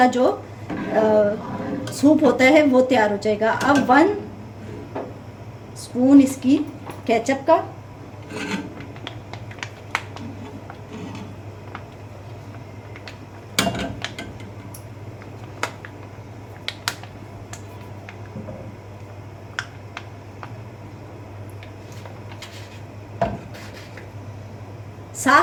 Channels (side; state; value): both; identical; correlation 1.00